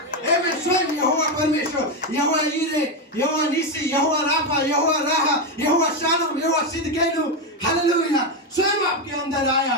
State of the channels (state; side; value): normal; both; correlation 0.09